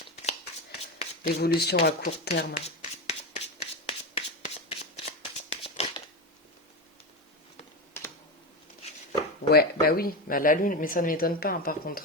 L'évolution à court terme. Ouais, bah oui, la lune, mais ça ne m'étonne pas hein, par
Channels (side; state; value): both; normal; correlation 0.17